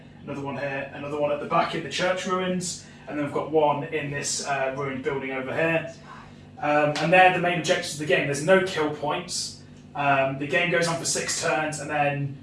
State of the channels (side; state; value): both; identical; correlation 1.00